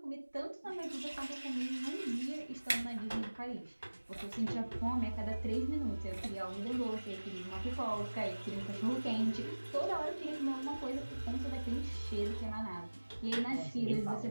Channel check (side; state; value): both; inverted; correlation -1.00